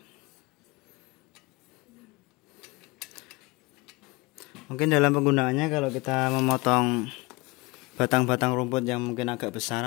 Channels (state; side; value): quieter; right; 24.9 dB